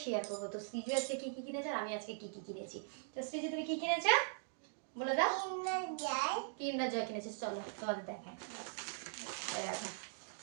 শেয়ার করবো। তো সৃজু আজকে কি কি কিনেছে আর আমি আজকে কি কি কিনেছি। তো সৃজু তুমি কি কিনেছো বলে দাও। কিন্ডার জয় কিনেছিস, চলো তোমাদের দেখায়।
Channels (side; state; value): left; silent; digital silence